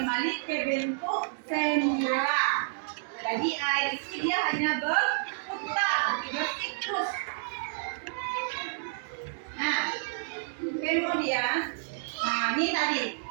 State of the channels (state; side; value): silent; left; digital silence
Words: ke bentuk semula. Jadi air itu dia hanya berputar, bersiklus. Nah, kemudian, ini tadi